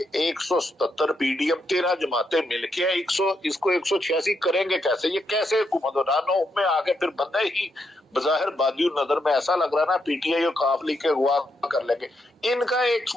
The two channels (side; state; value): both; normal; correlation 0.80